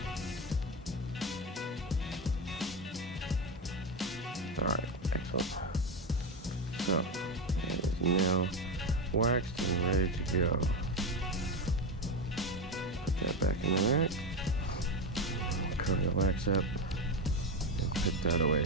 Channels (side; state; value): both; normal; correlation 0.15